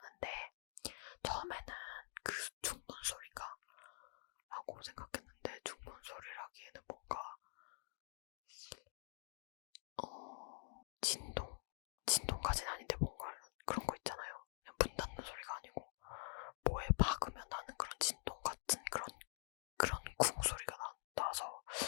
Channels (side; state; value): right; silent; digital silence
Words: 처음에는 그 중문 소리가 라고 생각했는데, 중문 소리라기에는 뭔가 진동까지는 아닌데 뭔가 그런 거 있잖아요. 그냥 문 닫는 소리가 아니고 뭐에 박으면 나는 그런 진동 같은 그런 쿵 소리가 나서